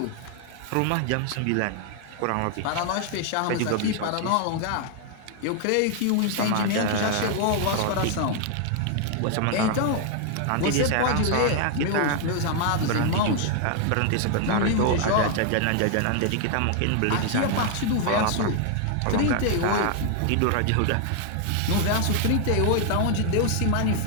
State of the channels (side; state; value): both; different; correlation 0.00